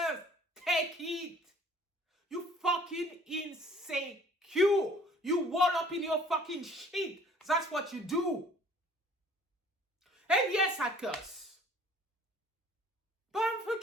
take it. You fucking insecure. You wall up in your fucking shit. That's what you do. And yes, I curse. But I'm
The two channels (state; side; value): normal; both; correlation 0.54